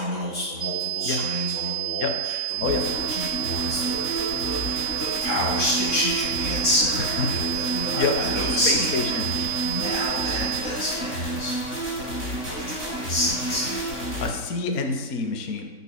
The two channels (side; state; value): right; late; 3.6 ms